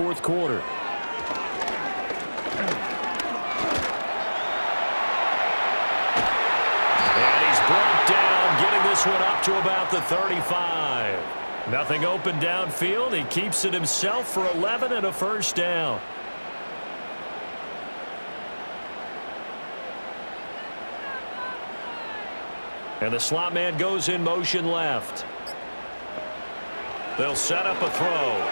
quarter. And he's brought down, getting this one up to about the 35. Nothing open downfield. He keeps it himself for 11 and a first down. And the slot man goes in motion left. They'll set up a throw.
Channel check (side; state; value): both; inverted; correlation -1.00